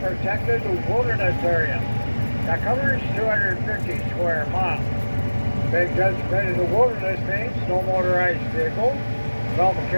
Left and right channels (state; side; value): inverted; both; correlation -1.00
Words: wilderness area that covers 250 square miles. Being designated a wilderness means no motorized vehicles, no